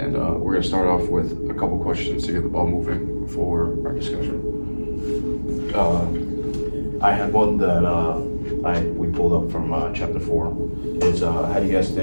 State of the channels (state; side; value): inverted; both; correlation -1.00